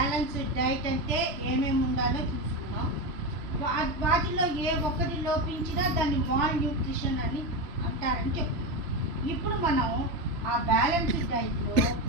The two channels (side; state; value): left; late; 3.0 ms